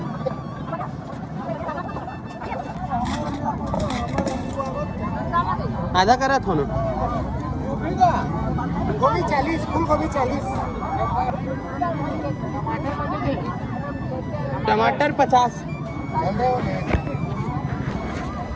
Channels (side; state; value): both; identical; correlation 1.00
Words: आधा करा था ना गोभी 40 फूल गोभी 40 टमाटर 50